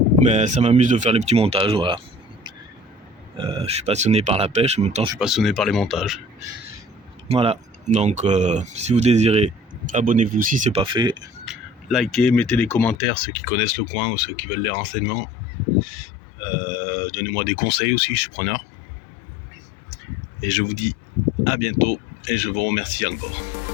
Mais ça m'amuse de faire les petits montages, voilà. Je suis passionné par la pêche, en même temps je suis passionné par les montages. Voilà, donc si vous désirez, abonnez-vous si c'est pas fait. Likez, mettez des commentaires, ceux qui connaissent le coin ou ceux qui veulent les renseignements. Donnez-moi des conseils aussi, je suis preneur. Et je vous dis à bientôt et je vous remercie encore.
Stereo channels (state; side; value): drops out; right; at 13.0 s